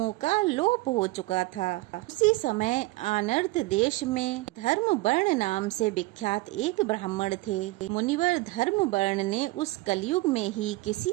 का लोप हो चुका था। उसी समय आनर्त देश में धर्म वर्ण नाम से विख्यात एक ब्राह्मण थे। मुनिवर धर्म वर्ण ने उस कलयुग में ही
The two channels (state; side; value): quieter; left; 20.7 dB